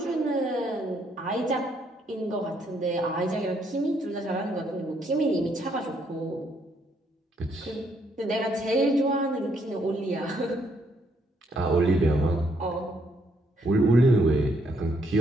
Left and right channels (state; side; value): normal; both; correlation 0.72